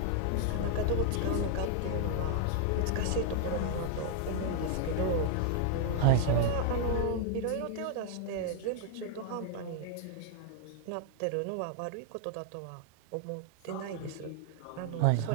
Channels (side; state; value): both; different; correlation -0.01